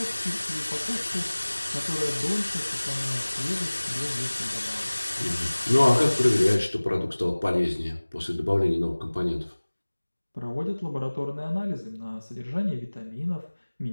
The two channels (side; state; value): both; inverted; correlation -1.00